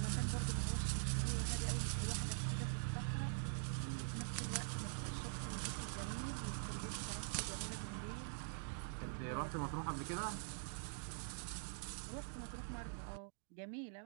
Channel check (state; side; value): silent; left; digital silence